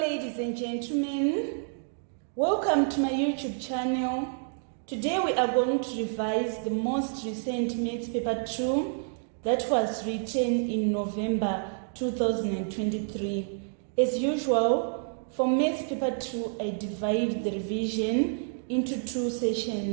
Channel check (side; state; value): left; silent; digital silence